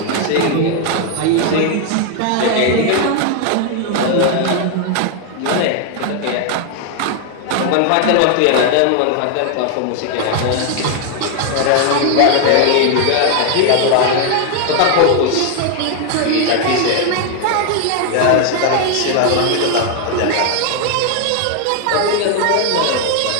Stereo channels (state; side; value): different; both; correlation 0.00